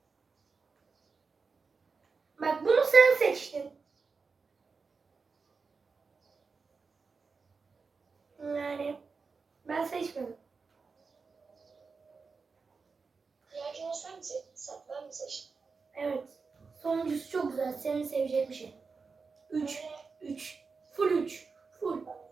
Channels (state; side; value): quieter; left; 4.8 dB